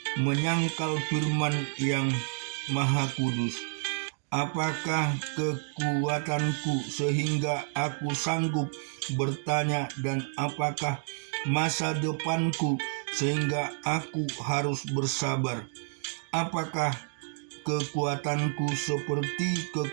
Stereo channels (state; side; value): silent; left; 58 dB below the other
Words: menyangkal firman yang Maha Kudus. Apakah kekuatanku sehingga aku sanggup bertanya, dan apakah masa depanku sehingga aku harus bersabar? Apakah kekuatanku seperti